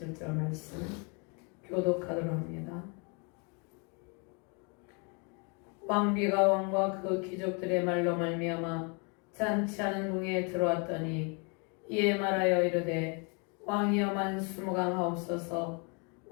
말씀 교독하도록 합니다. 왕비가 왕과 그 귀족들의 말로 말미암아 잔치하는 궁에 들어왔더니 이에 말하여 이르되 왕이여 만수무강하옵소서.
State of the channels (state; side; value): quieter; right; 34.7 dB